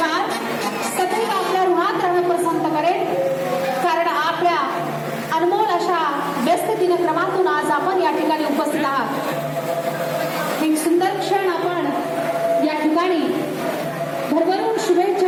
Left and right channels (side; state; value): both; identical; correlation 1.00